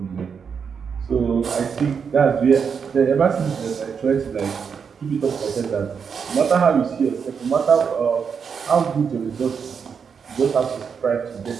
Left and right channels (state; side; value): quieter; left; 6.4 dB